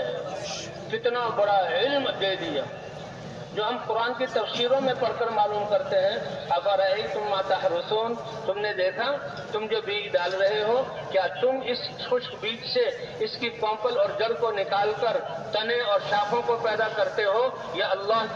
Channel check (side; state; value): both; identical; correlation 1.00